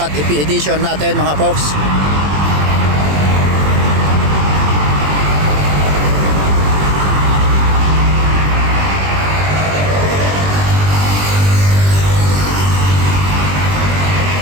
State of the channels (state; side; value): late; left; 20 ms